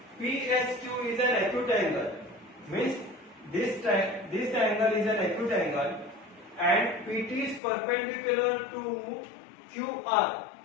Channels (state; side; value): drops out; right; at 7.6 s